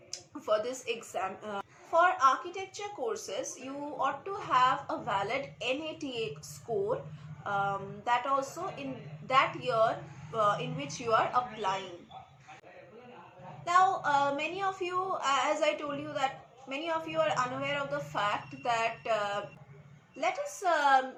for this exam. For architecture courses, you ought to have a valid NATA score, that also in that year in which you are applying. Now, many of you, as I told you, that many of you are unaware of the fact that let us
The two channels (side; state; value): both; identical; correlation 1.00